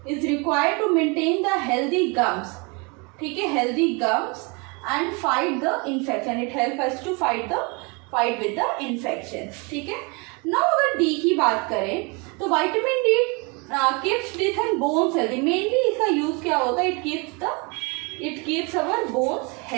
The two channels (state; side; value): quieter; left; 30.4 dB